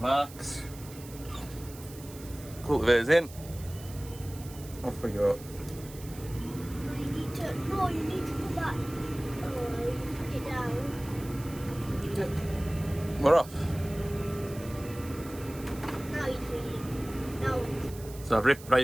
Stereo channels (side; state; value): right; noise; hiss, 17 dB below the sound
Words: Cultivator's in. Off we go. You need to put that. Put it down. We're off. Now you're free. Now. So I've ripped